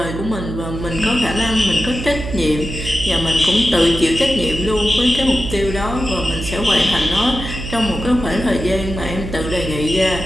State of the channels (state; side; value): noise; right; hum, 8 dB below the sound